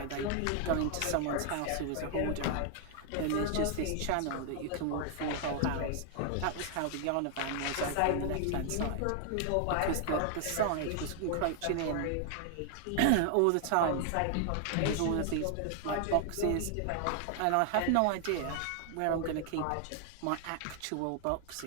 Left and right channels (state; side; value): different; both; correlation 0.00